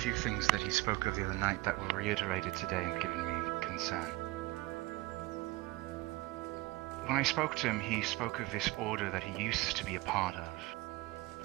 things that he spoke of the other night that were reiterated today and given me concern. When I spoke to him, he spoke of this order that he used to be a part of,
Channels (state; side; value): quieter; left; 20.4 dB